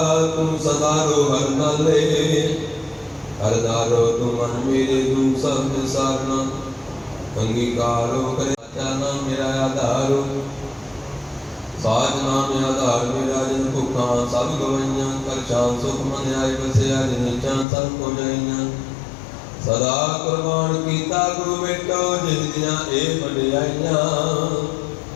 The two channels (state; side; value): drops out; right; at 17.7 s